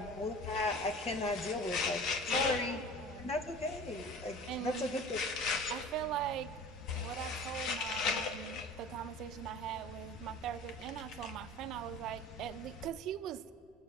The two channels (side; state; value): both; normal; correlation 0.40